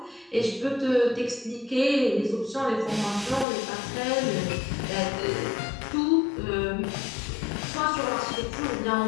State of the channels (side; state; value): right; drops out; at 3.5 s